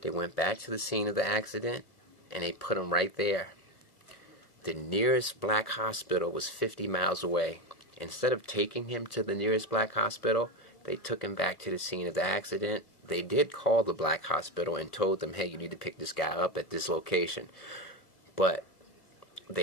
They went back to the scene of the accident and they put him right there. The nearest black hospital was 50 miles away. Instead of taking him to the nearest black hospital, they took him back to the scene of the accident. They did call the black hospital and told them, hey, you need to pick this guy up at this location. But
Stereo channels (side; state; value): right; late; 1.3 ms